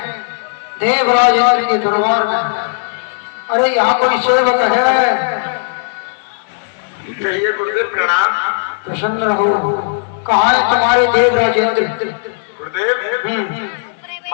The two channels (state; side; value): silent; right; 66 dB below the other